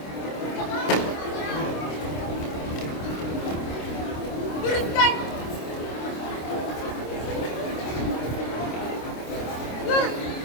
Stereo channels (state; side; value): late; right; 26 ms